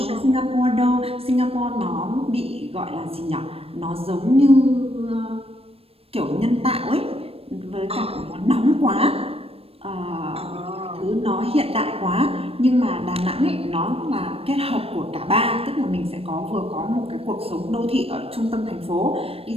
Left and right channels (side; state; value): left; late; 0.28 ms